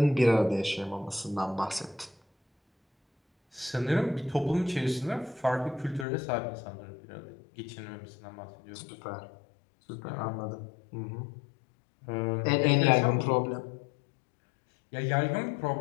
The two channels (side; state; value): right; drops out; at 6.1 s